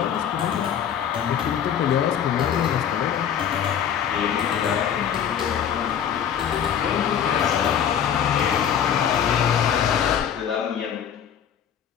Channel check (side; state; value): right; quieter; 8.8 dB